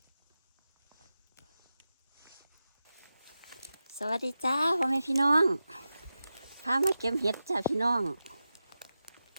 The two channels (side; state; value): both; inverted; correlation -0.92